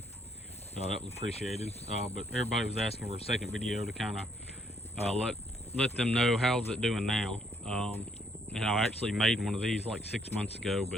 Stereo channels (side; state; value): both; normal; correlation 0.69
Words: that was appreciated. But everybody was asking for a second video to kind of let them know how's it doing now. And I actually made one of these like 6 months ago,